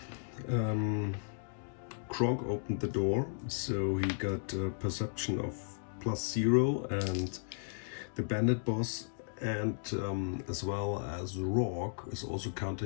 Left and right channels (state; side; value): silent; right; digital silence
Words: Kronk opened the door, so he got a perception of +0, and the bandit boss and as well as Rorg is also